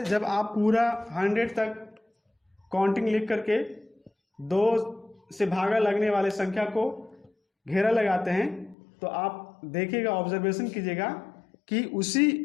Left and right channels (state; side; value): drops out; right; at 8.8 s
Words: जब आप पूरा 100 तक काउंटिंग लिख करके 2 से भागा लगने वाले संख्या को घेरा लगाते हैं, तो आप देखिएगा, ऑब्जर्वेशन कीजिएगा कि उसी